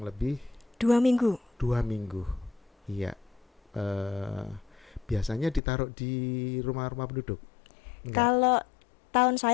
lebih 2 minggu. 2 minggu. Iya, eh, biasanya ditaruh di rumah-rumah penduduk? Enggak. Kalau tahun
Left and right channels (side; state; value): right; drops out; at 5.6 s